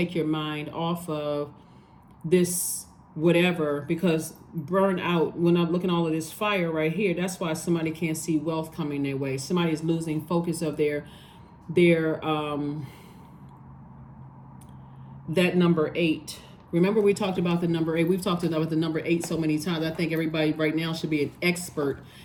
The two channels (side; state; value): both; identical; correlation 1.00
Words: your mind off of this whatever, because burn out, when I'm looking at all of this fire right here, that's why somebody can't see wealth coming their way. Somebody is losing focus of their that number 8. Remember we talked about the number 8. We've talked about the number 8 so many times. I think everybody right now should be an expert